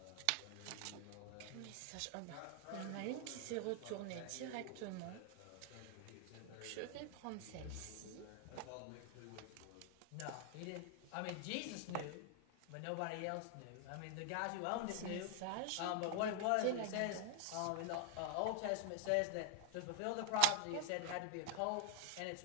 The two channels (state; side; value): different; both; correlation 0.00